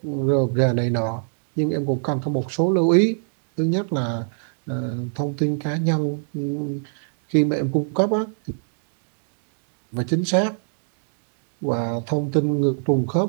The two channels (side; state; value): left; silent; digital silence